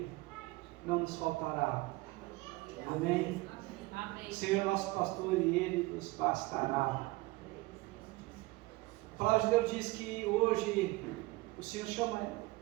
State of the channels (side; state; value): left; quieter; 21.4 dB